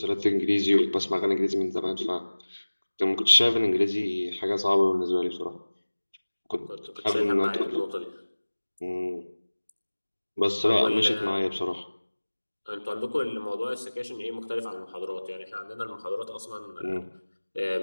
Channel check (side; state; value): both; inverted; correlation -1.00